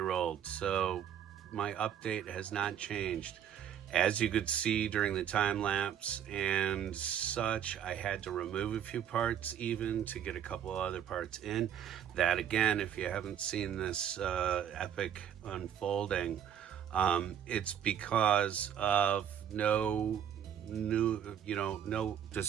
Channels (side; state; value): left; quieter; 9.4 dB